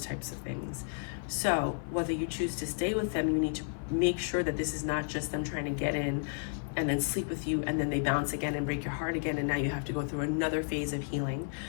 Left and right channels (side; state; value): right; silent; 56 dB below the other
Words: types of things. So whether you choose to stay with them, you need to make sure that this is not just them trying to get in and then sleep with you, and then they bounce again and break your heart again, and now you have to go through another phase of healing.